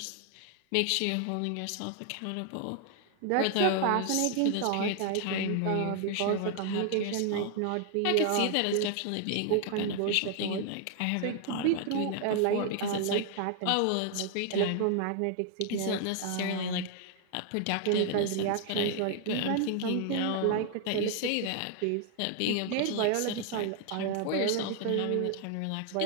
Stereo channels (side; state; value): both; different; correlation 0.00